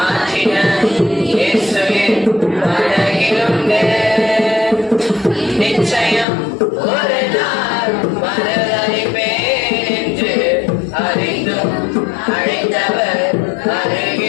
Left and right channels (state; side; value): drops out; right; at 6.2 s